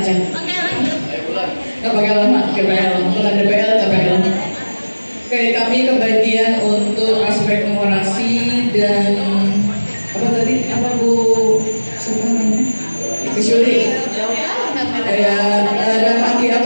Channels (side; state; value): both; inverted; correlation -1.00